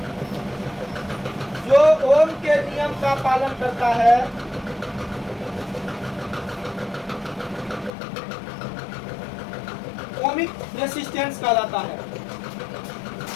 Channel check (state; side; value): drops out; right; at 7.9 s